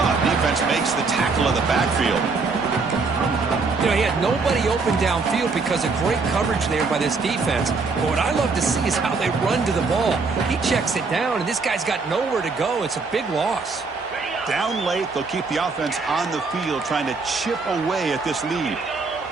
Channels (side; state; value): left; quieter; 4.3 dB